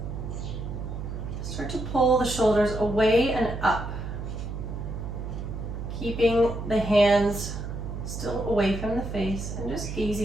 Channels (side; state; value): right; noise; hum, 6 dB below the sound